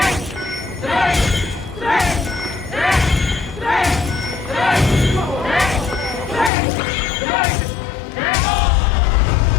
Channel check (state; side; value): drops out; right; at 6.5 s